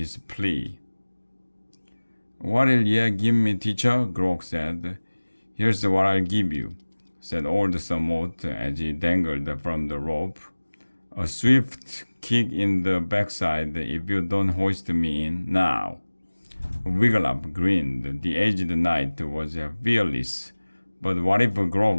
plea. What'll ye give me, teacher? Grok said. Here's what I'll give you, said old Sir Mort as he dangled from the rope. A swift kick in the backside if you don't hoist me in now. Wigglytuff grinned. The aged knight was fearless, but what if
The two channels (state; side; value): inverted; both; correlation -1.00